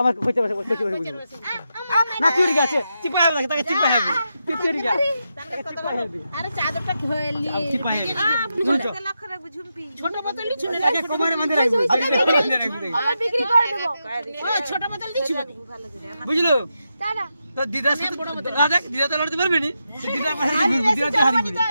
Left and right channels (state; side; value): inverted; both; correlation -0.86